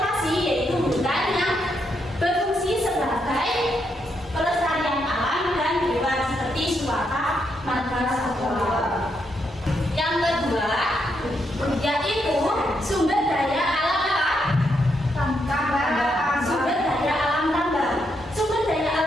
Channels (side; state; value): both; normal; correlation 0.79